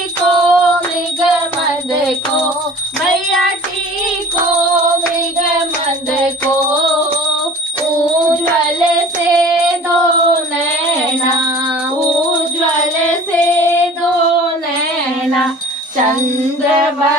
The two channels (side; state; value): both; normal; correlation 0.44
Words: मृग मद को मैया टीको मृग मद को उज्ज्वल से दो नैना उज्ज्वल से दो नैना चंद्र